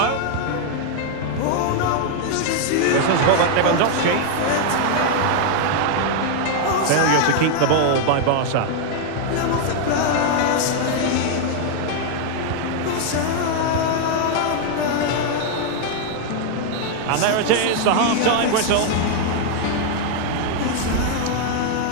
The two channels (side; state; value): both; different; correlation 0.00